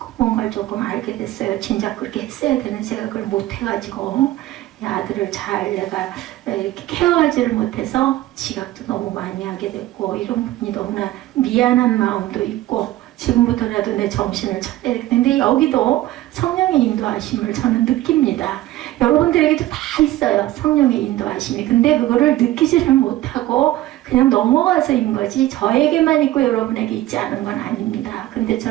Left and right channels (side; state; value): left; quieter; 15.5 dB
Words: 뭔가를 조금 알게 됐어요. 진작 그렇게 했어야 되는 제가 그걸 못해가지고 아들을 잘 내가 이렇게 케어하지를 못해서 지각도 너무 많이 하게 됐고, 이런 부분이 너무나 미안한 마음도 있고, 지금부터라도 내 정신을 차려야 되는데, 여기도 성령의 인도하심을 저는 느낍니다. 여러분들에게도 다 있어요, 성령의 인도하심이. 근데 그거를 느끼지를 못하고 그냥 넘어가서인 거지, 저에게만 있고 여러분에게 있지 않은 건 아닙니다. 근데